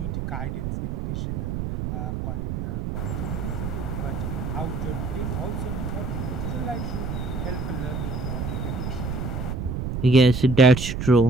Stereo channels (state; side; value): noise; right; rumble, 3 dB below the sound